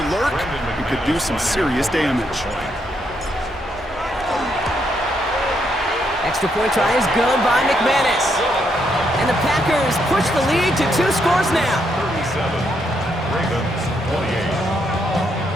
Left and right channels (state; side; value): normal; both; correlation 0.77